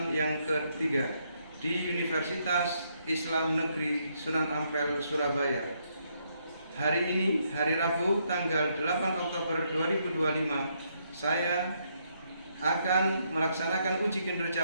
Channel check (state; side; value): inverted; both; correlation -0.75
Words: yang ketiga di Universitas Islam Negeri Sunan Ampel, Surabaya. Hari ini, hari Rabu, tanggal 8 Oktober 2025, saya akan melaksanakan uji